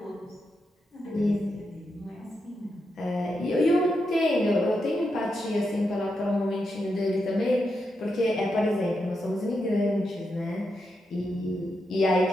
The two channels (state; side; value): normal; both; correlation 0.85